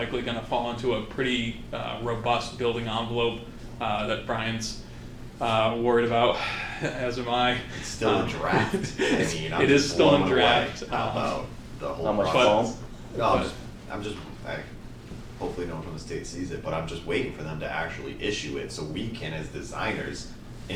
going to fall into a pretty robust building envelope that Brian's worried about, as am I. It's still in draft. I mean, I'm It is just still in blown away draft. about the whole How much process. foam? No, hopefully no one from the state sees it, but I'm just waiting for them to actually issue it so we can, as designers,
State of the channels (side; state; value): both; identical; correlation 1.00